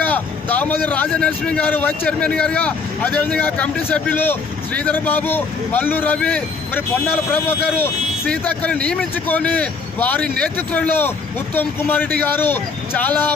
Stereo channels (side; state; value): right; quieter; 4.7 dB